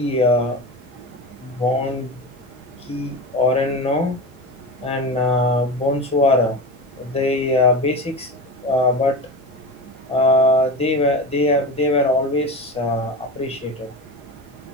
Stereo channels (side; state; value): both; normal; correlation 0.27